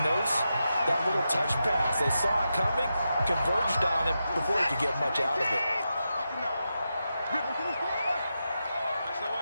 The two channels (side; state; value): both; inverted; correlation -0.88